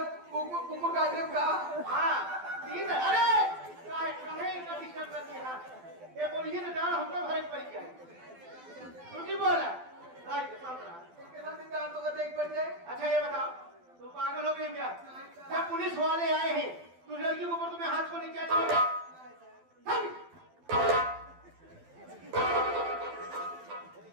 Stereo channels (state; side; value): late; left; 12 ms